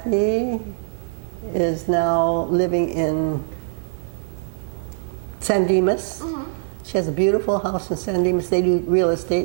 is now living in San Dimas. She has a beautiful house in San Dimas. They do real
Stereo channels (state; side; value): silent; left; digital silence